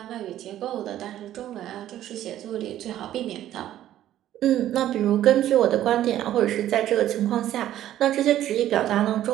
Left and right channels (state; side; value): quieter; left; 12.5 dB